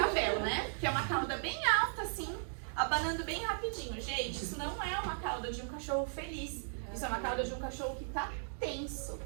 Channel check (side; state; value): left; silent; digital silence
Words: né? Que é uma cauda bem alta, assim, abanando bem rapidinho. Gente, isso não é uma cauda de um cachorro feliz. Isso é uma cauda de um cachorro que tá tenso.